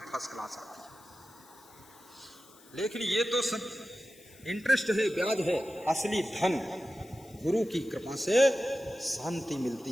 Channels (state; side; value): noise; left; hiss, 25 dB below the sound